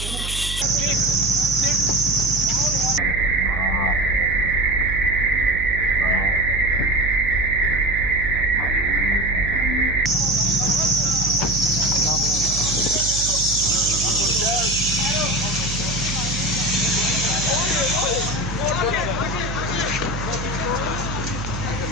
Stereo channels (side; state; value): right; noise; hum, 7 dB below the sound